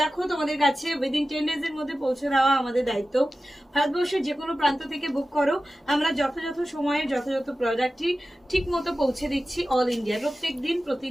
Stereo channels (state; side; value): normal; both; correlation 0.94